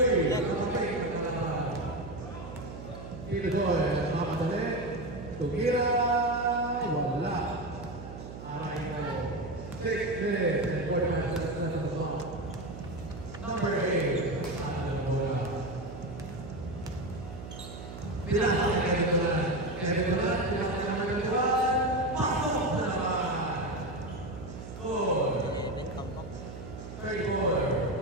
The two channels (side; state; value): right; noise; hum, 11 dB below the sound